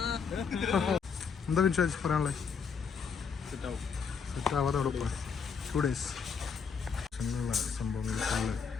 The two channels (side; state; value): right; quieter; 6.0 dB